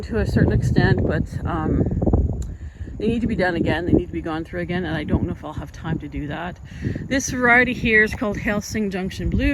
to a certain extent, but they need to be done again. They need to be gone through again, and I don't know if I'll have time to do that. This variety here is called Helsing Junction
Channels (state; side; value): identical; both; correlation 1.00